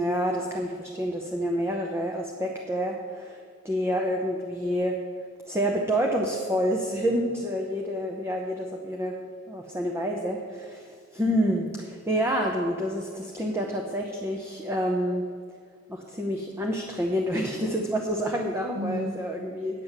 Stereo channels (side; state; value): both; normal; correlation 0.59